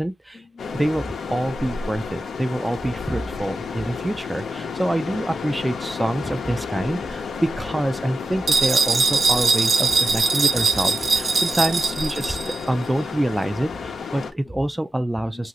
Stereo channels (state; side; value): normal; both; correlation 0.91